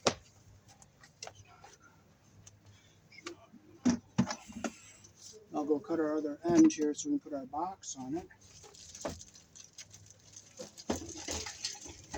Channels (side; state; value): both; identical; correlation 1.00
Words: I'll go cut our other end here so we can put our box on it.